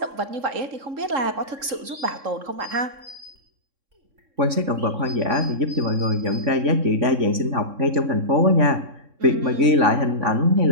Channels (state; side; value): late; left; 3.6 ms